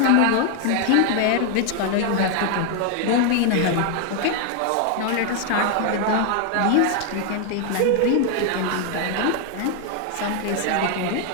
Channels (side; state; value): both; different; correlation 0.01